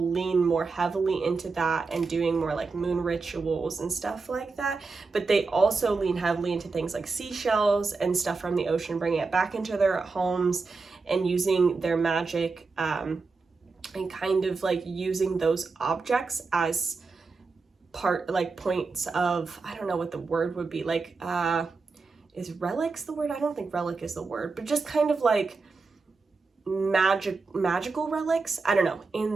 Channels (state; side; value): quieter; left; 4.3 dB